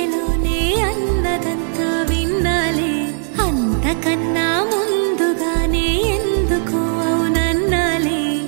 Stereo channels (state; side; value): silent; left; 59 dB below the other